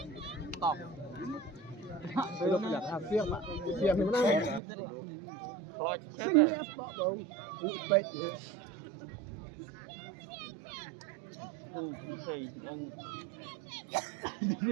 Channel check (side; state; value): left; drops out; at 4.6 s